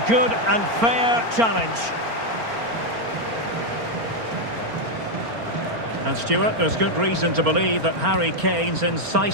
good and fair challenge. And Stuart, there's good reason to believe that Harry Kane's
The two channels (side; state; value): left; late; 4.4 ms